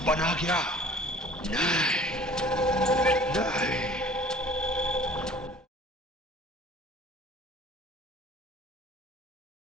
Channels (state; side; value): normal; both; correlation 0.48